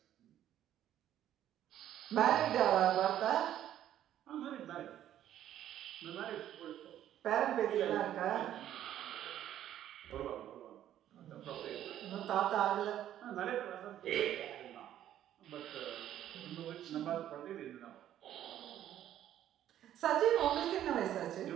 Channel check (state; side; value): quieter; left; 11.6 dB